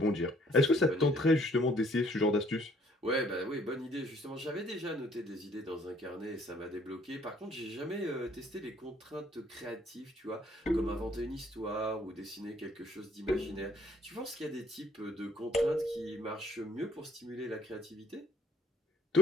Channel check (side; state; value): both; normal; correlation 0.62